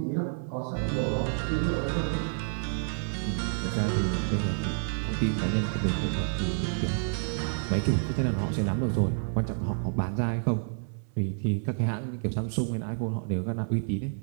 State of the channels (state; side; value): silent; left; 58 dB below the other